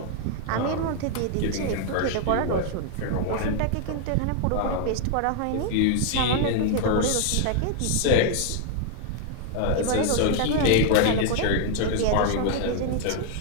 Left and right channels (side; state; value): both; different; correlation 0.00